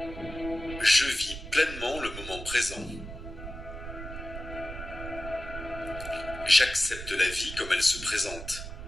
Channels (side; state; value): right; noise; rumble, 10 dB below the sound